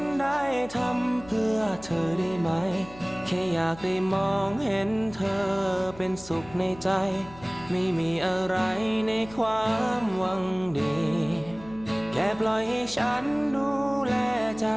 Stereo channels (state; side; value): noise; left; hum, 19 dB below the sound